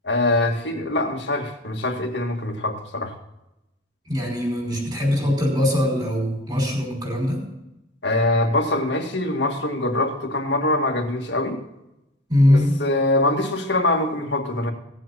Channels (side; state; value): both; normal; correlation 0.33